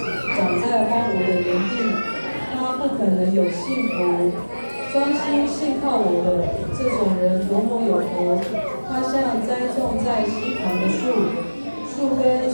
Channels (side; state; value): both; inverted; correlation -1.00